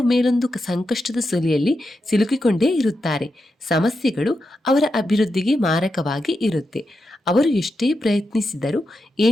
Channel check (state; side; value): normal; both; correlation 0.87